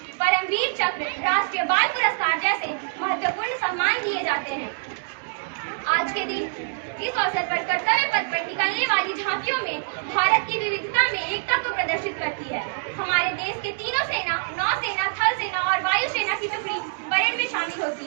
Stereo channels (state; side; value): silent; left; digital silence